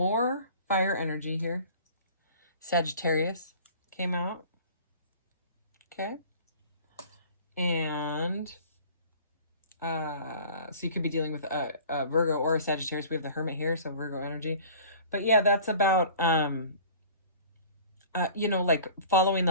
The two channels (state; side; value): inverted; both; correlation -0.45